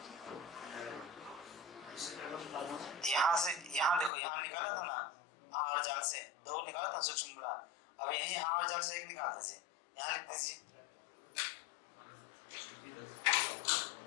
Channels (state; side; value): drops out; right; at 4.1 s